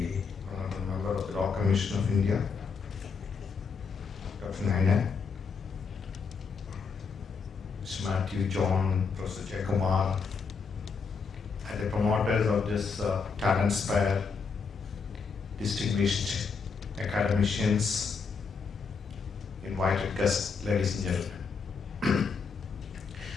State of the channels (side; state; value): right; quieter; 5.3 dB